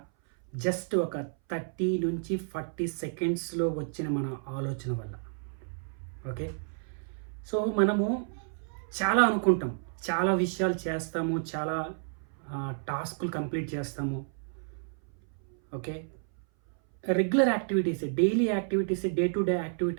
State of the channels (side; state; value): left; silent; 57 dB below the other